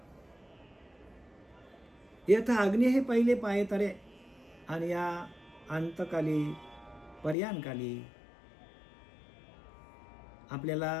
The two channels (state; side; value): drops out; right; at 7.4 s